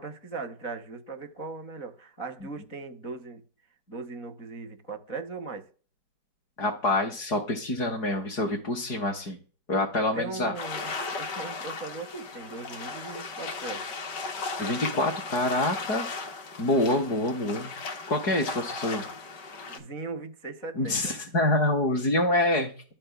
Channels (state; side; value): late; right; 4.8 ms